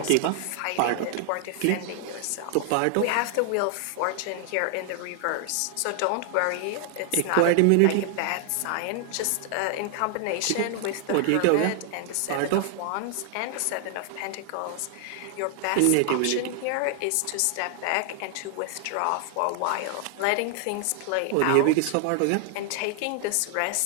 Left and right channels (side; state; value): both; different; correlation 0.00